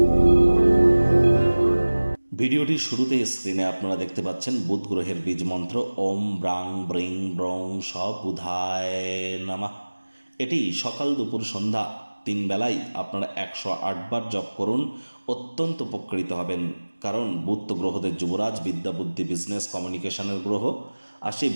ভিডিওটির শুরুতেই স্ক্রিনে আপনারা দেখতে পাচ্ছেন বুধ গ্রহের বীজ মন্ত্র ওম ব্রাং ব্রিং ব্রং স বুধায় নমঃ। এটি সকাল দুপুর সন্ধ্যা 3 বেলায় আপনারা 108 বার জপ করুন, অত্যন্ত উপকৃত হবেন। কারণ বুধ তো গ্রহদের যুবরাজ, বিদ্যা বুদ্ধি বিজনেস কমিউনিকেশনের গ্রহ। আর সেই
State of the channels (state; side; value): inverted; both; correlation -1.00